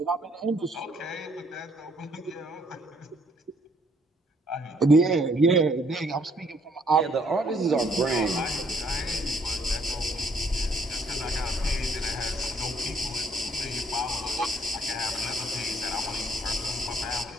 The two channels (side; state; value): both; normal; correlation 0.66